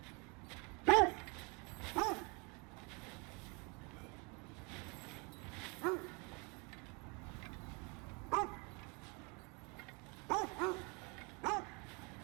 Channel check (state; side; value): quieter; left; 31.1 dB